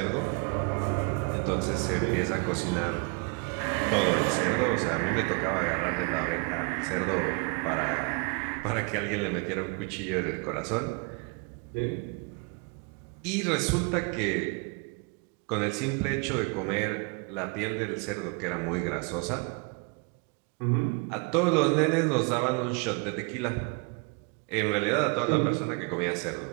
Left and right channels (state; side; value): quieter; left; 33.5 dB